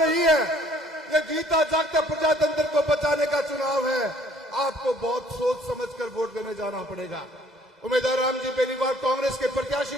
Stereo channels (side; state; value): both; normal; correlation 0.59